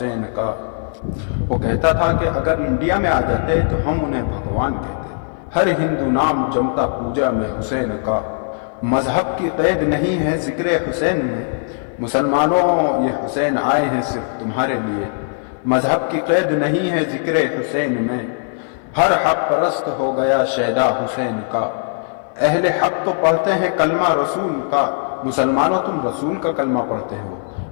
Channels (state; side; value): silent; right; 57 dB below the other